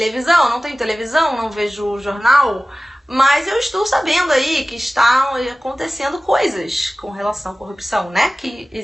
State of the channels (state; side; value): normal; both; correlation 0.96